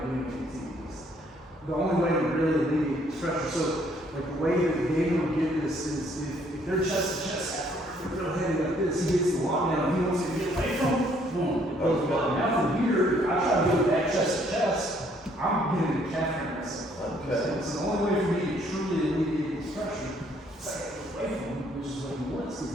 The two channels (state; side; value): normal; both; correlation 0.65